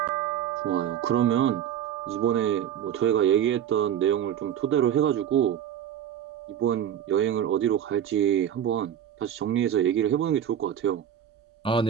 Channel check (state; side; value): quieter; left; 9.7 dB